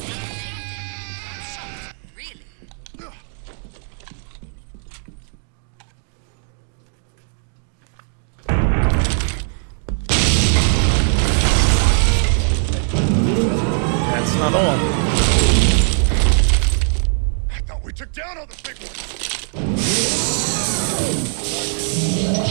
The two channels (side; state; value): left; silent; 58 dB below the other